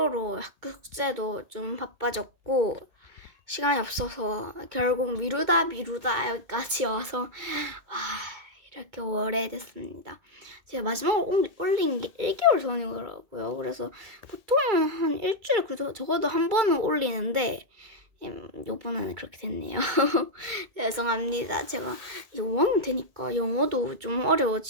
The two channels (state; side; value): late; left; 2.2 ms